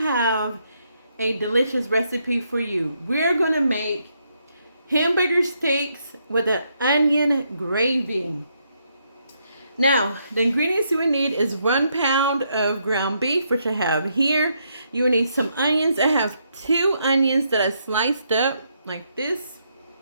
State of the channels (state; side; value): inverted; both; correlation -0.77